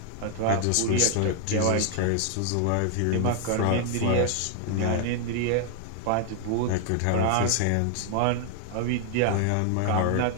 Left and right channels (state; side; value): different; both; correlation 0.00